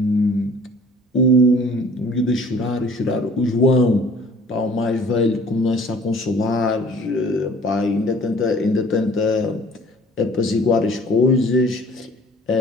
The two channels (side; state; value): both; normal; correlation 0.51